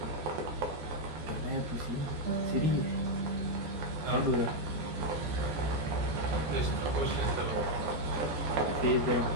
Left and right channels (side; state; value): left; late; 14 ms